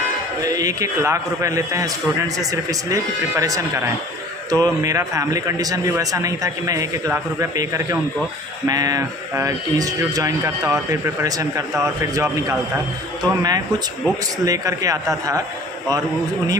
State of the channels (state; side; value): normal; both; correlation 0.47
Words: 1-1 लाख रुपए लेते हैं स्टूडेंट से सिर्फ इसलिए कि प्रिपरेशन कराएं। तो मेरा फैमिली कंडीशन भी वैसा नहीं था कि मैं 1-1 लाख रुपए पे करके उनको मैं इंस्टीट्यूट ज्वाइन करता और फिर प्रिपरेशन करता और फिर जॉब निकालता। तो मैं कुछ बुक्स लेकर के आता था और उन्हीं